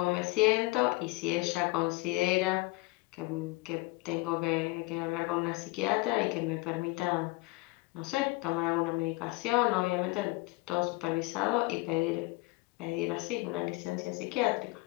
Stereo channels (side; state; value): right; quieter; 23.2 dB